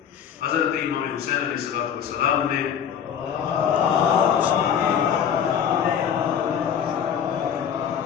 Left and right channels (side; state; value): right; quieter; 8.4 dB